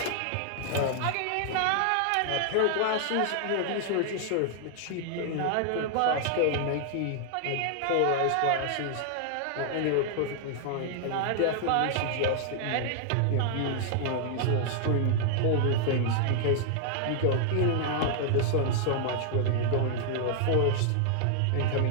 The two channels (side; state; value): both; different; correlation -0.01